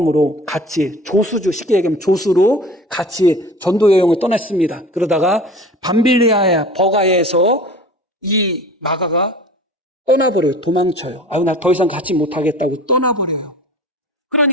같이 조수주, 쉽게 얘기하면 조수로 같이 전도 여행을 떠났습니다. 그러다가 밤빌리아의 버가에서 이 마가가 떠나버려요. 도망쳐요. 나 더 이상 같이 못하겠다고 떠나버려요.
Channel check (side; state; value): both; normal; correlation 0.41